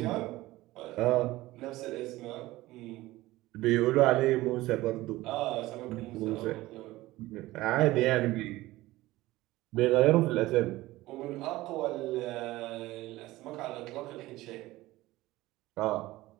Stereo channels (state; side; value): quieter; left; 18.0 dB